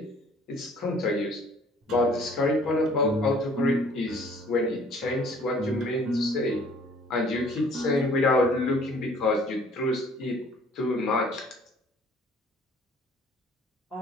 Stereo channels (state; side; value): normal; both; correlation 0.55